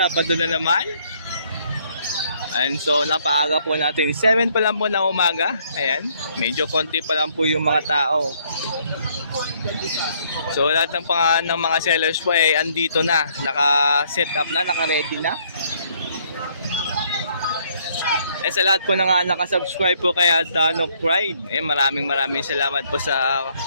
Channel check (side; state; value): both; inverted; correlation -0.67